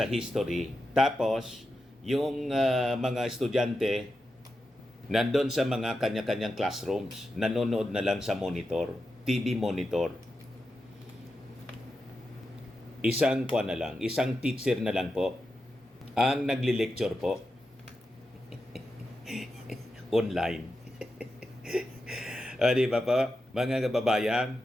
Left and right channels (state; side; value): normal; both; correlation 0.89